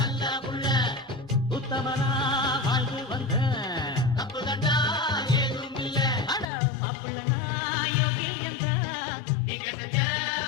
உள்ள உத்தமனா வாழ்ந்து வந்த தப்பு கண்டா ஏதும் இல்ல அட மாப்பிள்ளனா யோகியந்தா நீங்க செஞ்ச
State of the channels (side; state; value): right; drops out; at 6.5 s